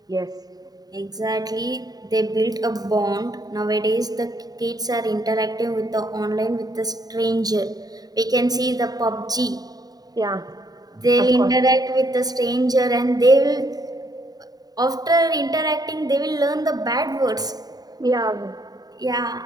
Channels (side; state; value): left; late; 0.18 ms